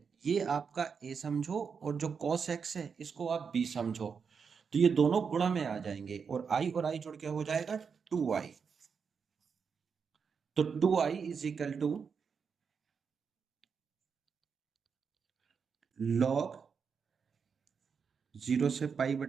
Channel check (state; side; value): quieter; left; 6.1 dB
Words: ये आपका a समझो, और जो cos x है इसको आप b समझो। तो ये दोनों गुणा में आ जाएंगे, और i जुड़ के हो जाएगा 2i। तो 2i is equal to log 0 से पाई